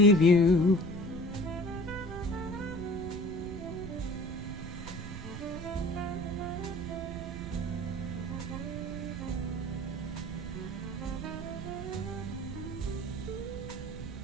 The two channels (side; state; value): right; noise; rumble, 9 dB below the sound